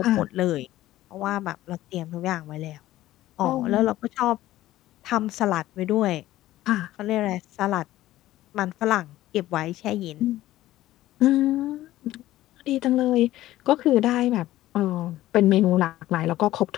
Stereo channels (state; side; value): quieter; right; 15.2 dB